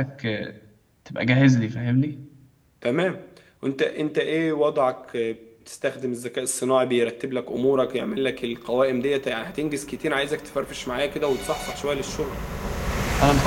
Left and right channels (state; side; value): identical; both; correlation 1.00